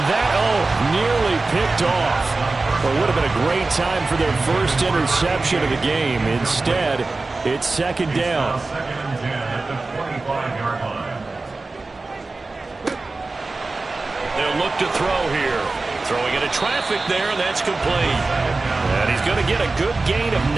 that, nearly picked off. Well, it would have been a great time for their first interception of the game. Instead, it's second down. They'll look to throw here. Throwing into traffic there, and that's complete. And he's going to get a good gain of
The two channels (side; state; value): left; quieter; 3.5 dB